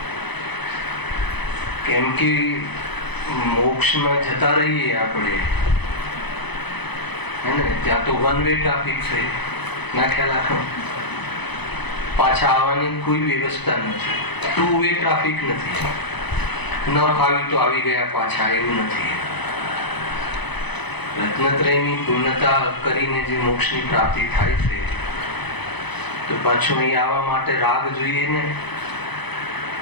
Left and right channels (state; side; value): late; right; 0.99 ms